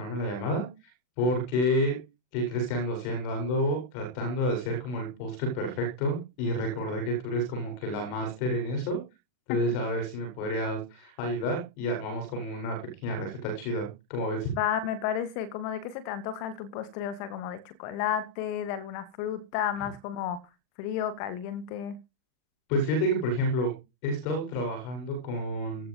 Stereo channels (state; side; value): late; right; 40 ms